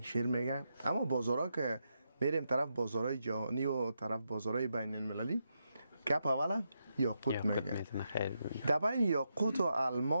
میگه، اما بازارها که میریم طرف بازارهای جهانی و طرف بازارهای بین المللی گپ اول یاقوت میگه. در بین یاقوت و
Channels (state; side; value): inverted; both; correlation -0.84